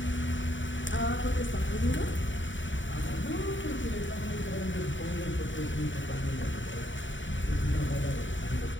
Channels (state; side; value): late; right; 0.55 ms